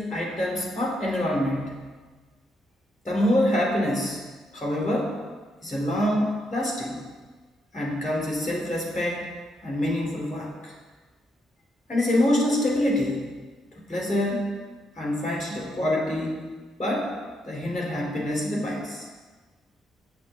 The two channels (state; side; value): normal; both; correlation 0.79